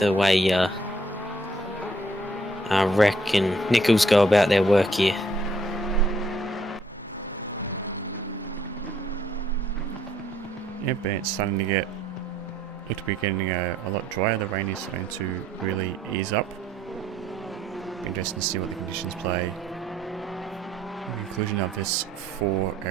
way Wreck and Nichols go about their work here. Yep, and it's starting to look to be getting a lot drier. The rain is starting to really ease up. Be interesting to see what the conditions play. The conclusion of this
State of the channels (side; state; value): both; normal; correlation 0.66